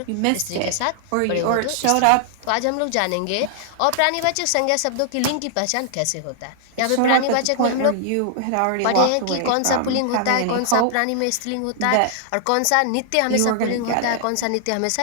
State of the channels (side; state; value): both; different; correlation -0.01